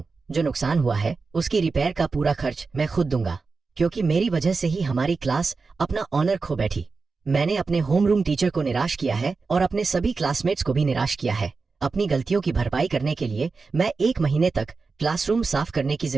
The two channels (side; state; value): left; quieter; 4.4 dB